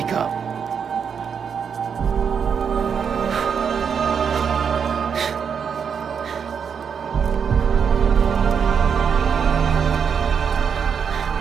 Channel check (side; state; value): left; quieter; 6.9 dB